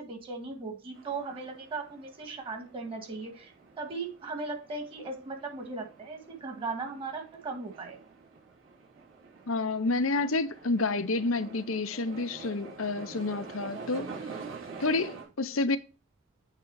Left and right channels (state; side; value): normal; both; correlation 0.07